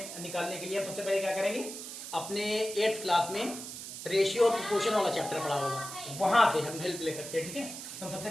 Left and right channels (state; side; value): noise; right; hiss, 9 dB below the sound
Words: निकालने के लिए हम सबसे पहले क्या करेंगे, अपने 8th क्लास में रेशियो और प्रोपोर्शन वाला चैप्टर पढ़ा होगा, वहां से हम हेल्प ले सकते हैं। ठीक है, तो सबसे